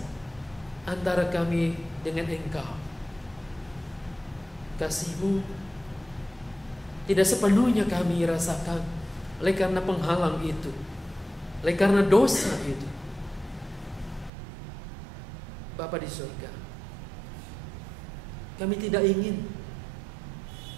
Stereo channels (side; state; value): left; drops out; at 14.3 s